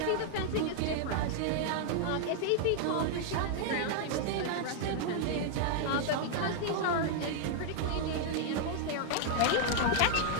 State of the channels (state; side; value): different; both; correlation -0.01